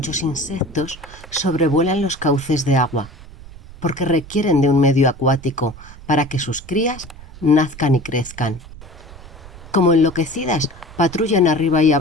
insectos sobrevuelan los cauces de agua, porque requieren de un medio acuático para que sus crías nazcan y crezcan. Como enloquecidas, patrullan arriba y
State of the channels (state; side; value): noise; right; rumble, 17 dB below the sound